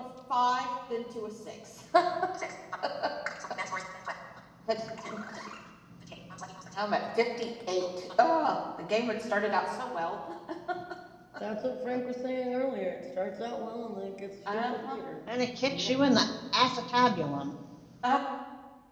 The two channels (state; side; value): identical; both; correlation 1.00